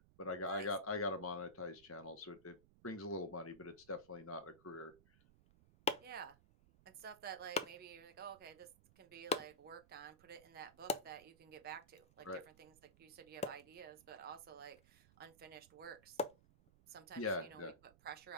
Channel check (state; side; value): noise; right; rumble, 24 dB below the sound